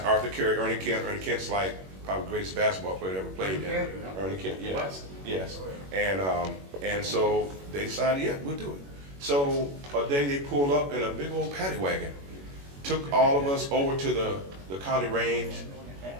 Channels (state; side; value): late; left; 21 ms